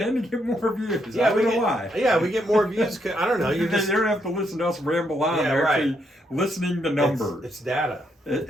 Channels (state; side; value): normal; both; correlation 0.76